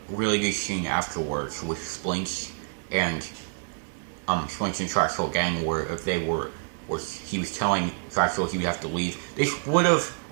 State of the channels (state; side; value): silent; left; 60 dB below the other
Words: really good scene afterwards with Splinch and Splinch and Trexel gang, where he was telling Trexel he would have to leave.